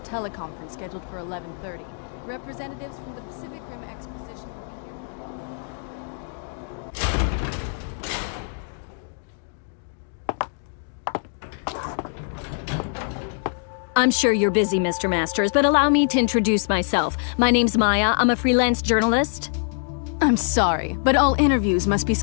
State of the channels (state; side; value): silent; right; 59 dB below the other